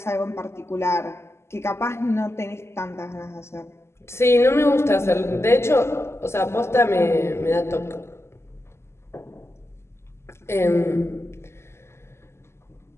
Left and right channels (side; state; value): right; late; 0.13 ms